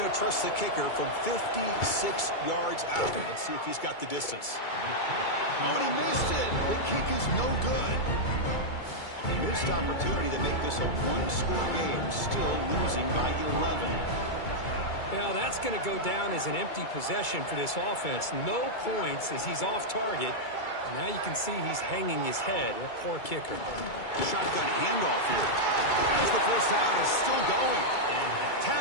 to trust the kicker from 56 yards out. Let's see if he's got the distance. Oh, and he missed it. The kick is no good. A missed opportunity to make this a one-score game, still losing by 11. Well, that's going to go down as an empty possession for this offense. No points as he's off target. Now you can see he's hanging his head. A poor kicker. Shotgun handoff here. As the first down is still going.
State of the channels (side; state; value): right; late; 2.3 ms